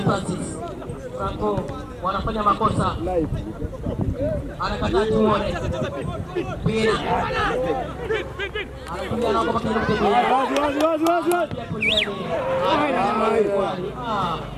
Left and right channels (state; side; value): identical; both; correlation 1.00